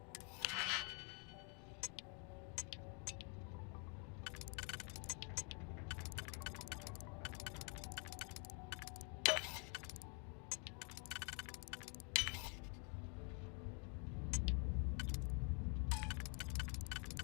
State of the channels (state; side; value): quieter; right; 35.2 dB